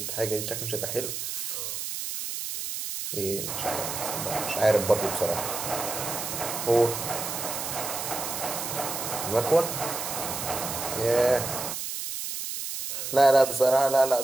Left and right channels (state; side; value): noise; right; hiss, 5 dB below the sound